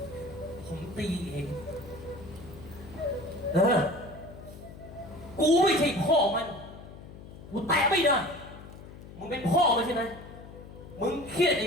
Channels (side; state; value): left; noise; hum, 16 dB below the sound